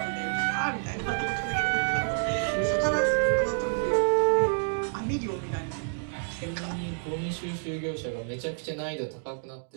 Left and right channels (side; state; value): left; silent; digital silence